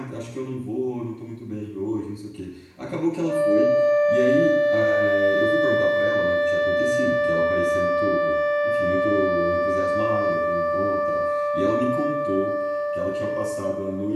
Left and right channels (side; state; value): both; identical; correlation 1.00